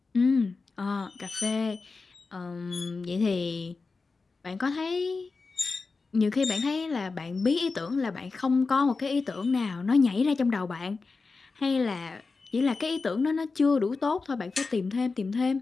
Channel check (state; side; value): quieter; right; 4.2 dB